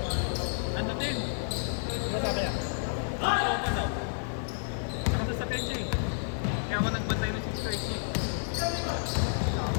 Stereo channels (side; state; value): right; silent; digital silence